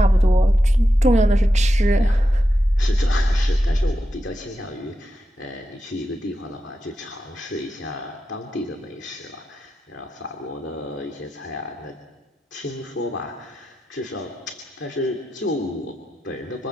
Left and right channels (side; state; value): both; normal; correlation 0.89